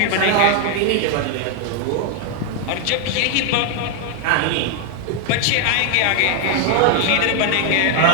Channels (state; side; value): different; both; correlation 0.01